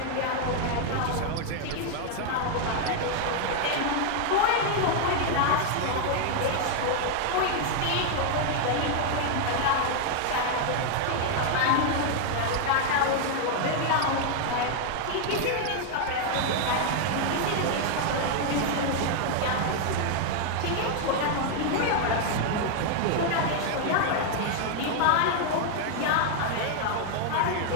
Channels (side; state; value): both; different; correlation 0.00